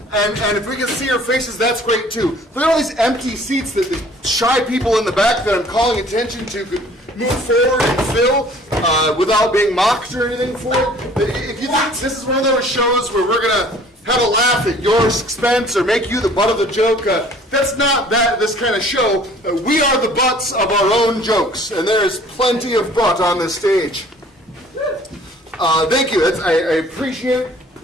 and if we can see your faces, that's great too. Look at all these empty seats that the shy people in the back that I'm calling attention to could move forward and fill without being mocked or anything for it. If you think this is one of those shows where we're going to have a laugh at your expense or make you the butt of the joke, that's not this kind of show. We are the butts of our own jokes, and there is plenty of butt on this stage. Thank you. I appreciate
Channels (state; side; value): normal; both; correlation 0.52